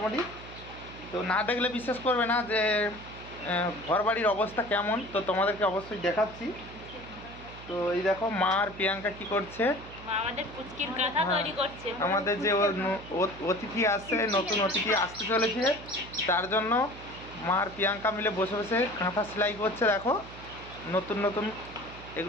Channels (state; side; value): noise; right; hum, 16 dB below the sound